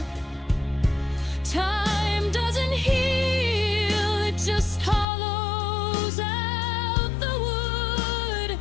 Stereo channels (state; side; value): drops out; right; at 5.1 s